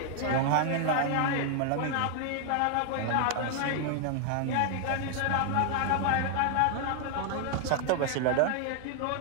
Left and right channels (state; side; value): different; both; correlation 0.00